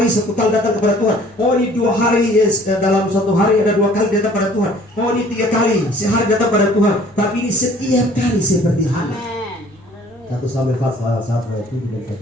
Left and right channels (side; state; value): left; noise; rumble, 29 dB below the sound